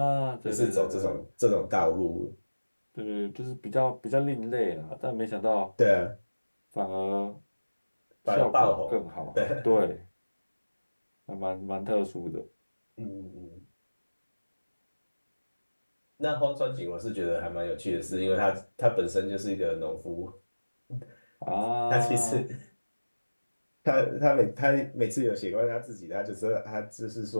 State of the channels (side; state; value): both; inverted; correlation -1.00